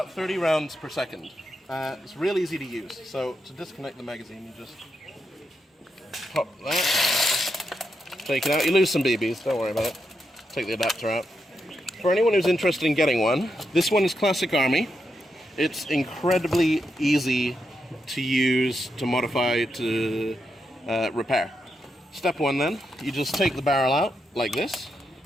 30 rounds per second. It's real easy to use. So to disconnect the magazine, you just pop that, take it out. You lose some BBs, don't worry about it. Take the adapter out. For anyone who's interested in getting one, this one is Classic Army. It's incredibly easy to use, to modify, to repair. Step one then, you just take the barrel out like this.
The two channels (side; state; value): both; normal; correlation 0.84